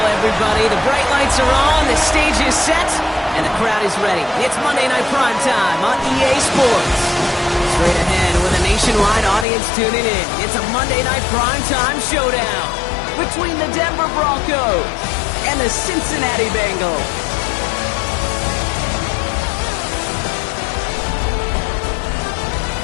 everybody. The bright lights are on, the stage is set, and the crowd is ready. It's Monday Night Prime Time on EA Sports. Straight ahead with a nationwide audience tuning in, it's a Monday Night Prime Time showdown between the Denver Broncos and the Cincinnati Bengals.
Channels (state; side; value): drops out; right; at 9.5 s